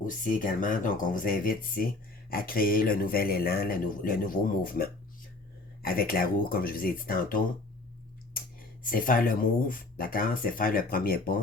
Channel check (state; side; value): quieter; right; 3.2 dB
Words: également. Donc, on vous invite ici à créer le nouvel élan, le nouveau mouvement. Avec la roue, comme je vous ai dit tantôt, c'est faire le move, d'accord? C'est faire le premier